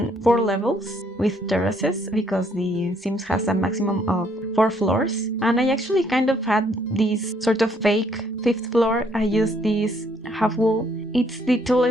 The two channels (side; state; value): both; normal; correlation 0.68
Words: 4 levels with terraces because the Sims has a maximum of 4 floors, and I actually kind of had this sort of fake 5th floor. I used this half wall. It's the